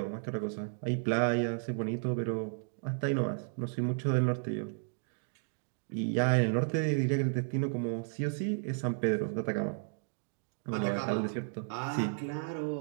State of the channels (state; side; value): silent; left; digital silence